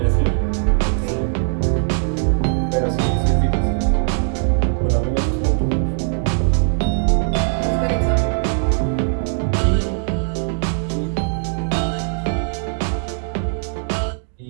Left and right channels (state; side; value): silent; left; digital silence